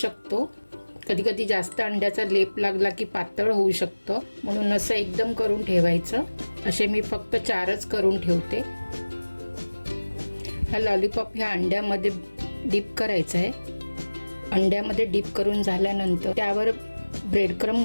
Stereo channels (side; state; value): both; inverted; correlation -1.00